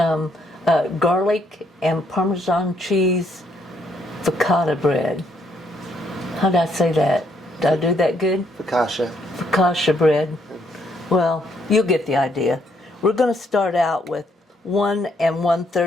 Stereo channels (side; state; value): both; normal; correlation 0.71